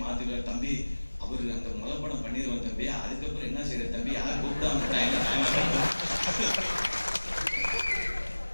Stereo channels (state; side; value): inverted; both; correlation -1.00